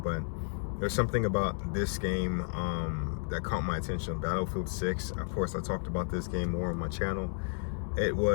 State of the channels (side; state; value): right; silent; 56 dB below the other